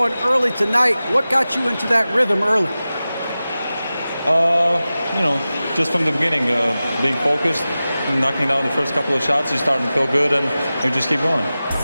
early tonight. What got you into that rhythm early? You know, just from the beginning, being focused, knocking down the first couple of shots, you're starting to feel good, and you just keep going.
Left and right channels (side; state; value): both; inverted; correlation -0.95